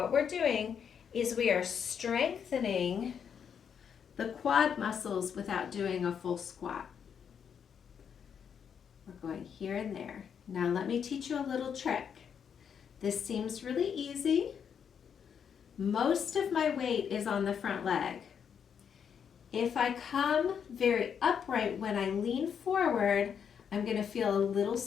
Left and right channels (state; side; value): quieter; right; 7.5 dB